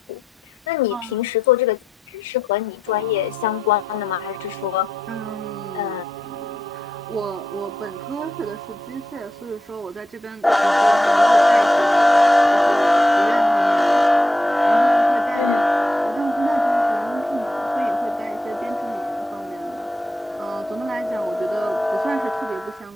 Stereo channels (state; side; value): normal; both; correlation 0.84